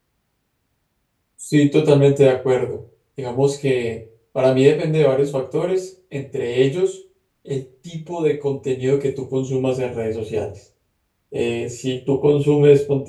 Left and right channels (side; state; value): both; identical; correlation 1.00